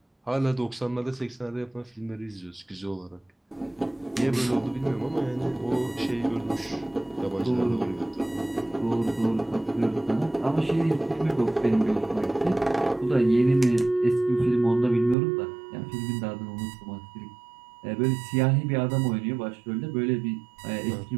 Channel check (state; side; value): drops out; left; at 15.2 s